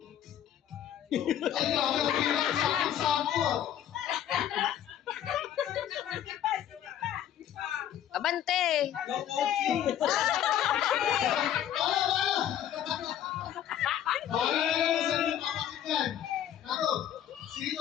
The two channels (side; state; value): right; quieter; 10.5 dB